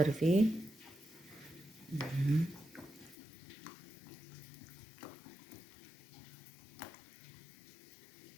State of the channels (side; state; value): right; drops out; at 3.2 s